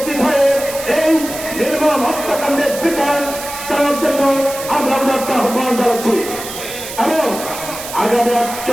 হয়ে এই নির্মম হত্যাকাণ্ডের বিচার চালার জন্য আমরা একটা আহ্বান জানাচ্ছি এবং আগামী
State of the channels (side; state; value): right; noise; hiss, 10 dB below the sound